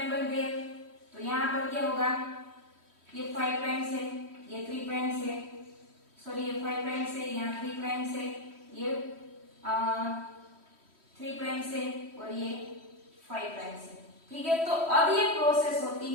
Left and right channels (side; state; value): left; late; 3.1 ms